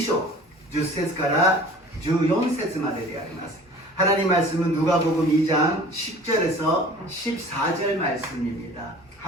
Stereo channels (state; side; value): normal; both; correlation 0.45